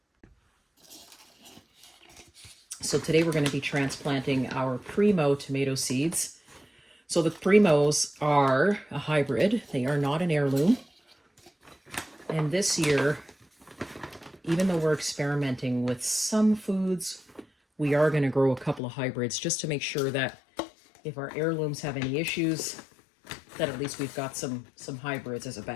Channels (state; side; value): drops out; right; at 18.8 s